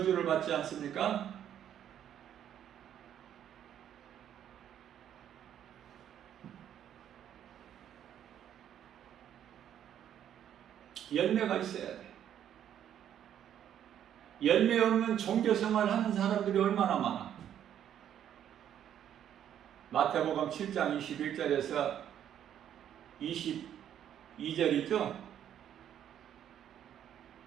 받지 않습니까? 열매가 있어야 돼. 열매 없는 종교생활 하는 사람들이 얼마나 많아. 마태복음 7장 21절에서 22절이죠.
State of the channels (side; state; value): left; quieter; 10.1 dB